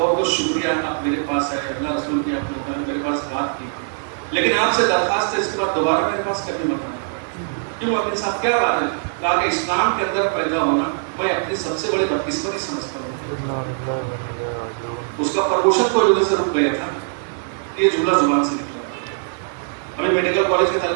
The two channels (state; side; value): silent; left; digital silence